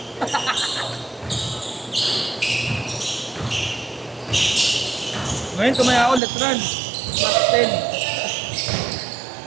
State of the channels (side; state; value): left; drops out; at 6.2 s